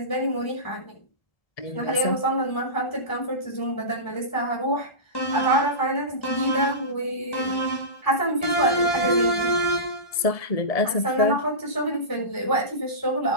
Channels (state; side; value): late; right; 1.7 ms